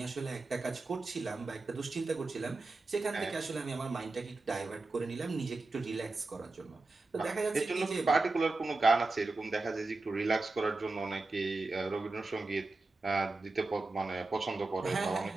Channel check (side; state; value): left; quieter; 3.4 dB